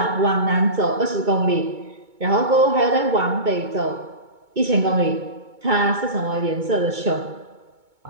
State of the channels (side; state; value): left; late; 2.2 ms